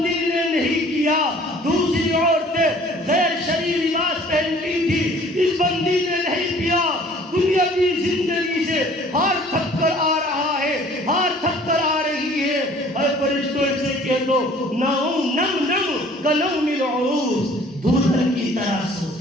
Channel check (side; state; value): both; normal; correlation 0.53